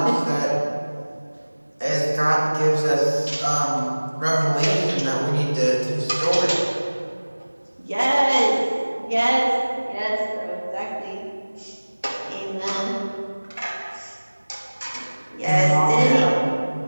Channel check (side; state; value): both; inverted; correlation -1.00